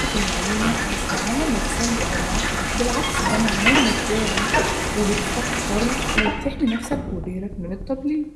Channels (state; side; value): identical; both; correlation 1.00